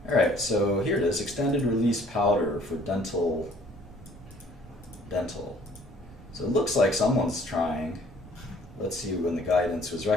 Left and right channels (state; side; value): normal; both; correlation 0.57